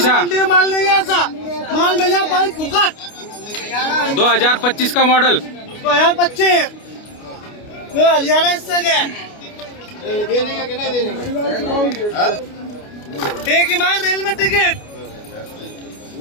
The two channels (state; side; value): late; right; 29 ms